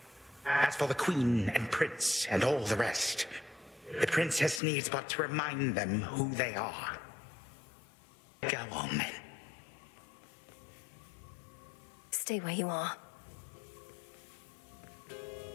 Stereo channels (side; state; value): right; drops out; at 4.6 s